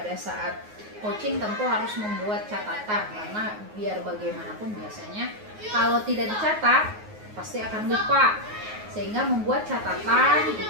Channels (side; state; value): left; late; 9.5 ms